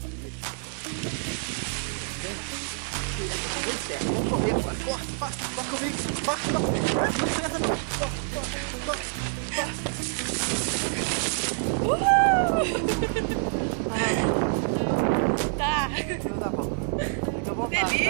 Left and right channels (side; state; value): left; silent; 60 dB below the other